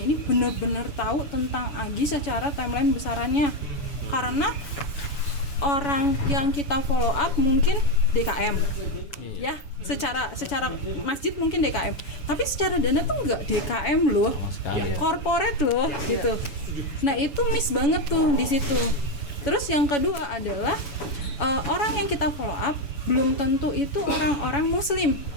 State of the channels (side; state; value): right; late; 7.1 ms